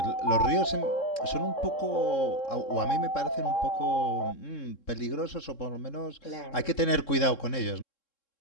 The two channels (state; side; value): late; right; 3.7 ms